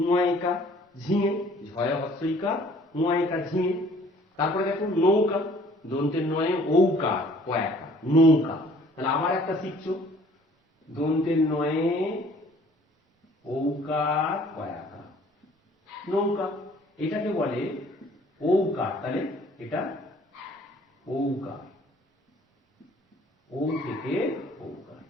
ঝিঙে। ঝয়ে হস্যইকার, উয়াইকার, ঝিঙে। তারপরে দেখো নৌকা, দন্তের নয়ে ঔকার, কয়াকার, নৌকা। তাহলে আবার একটা শিখছো, দন্তের নয়ে ঔকার, কয়াকার, নৌকা। এটাকে বলে ঔকার। তাহলে এটা ঔকার, ও থেকে ঔকার।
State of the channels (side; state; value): both; normal; correlation 0.56